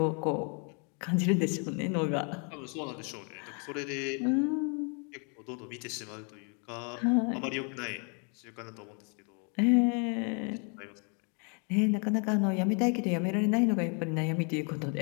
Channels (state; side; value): quieter; right; 37.5 dB